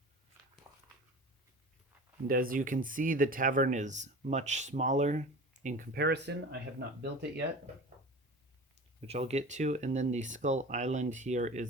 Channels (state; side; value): normal; both; correlation 0.36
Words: And as you can see, the tavern is much smaller in comparison. I have not built it yet, which I'll get to. And then the Skull Island here